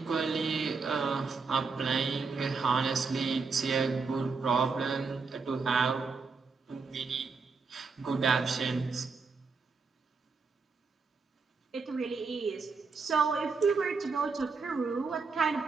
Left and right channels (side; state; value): left; quieter; 4.7 dB